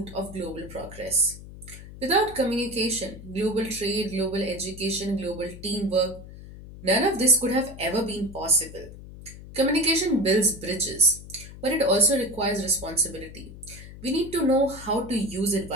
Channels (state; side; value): noise; left; hum, 15 dB below the sound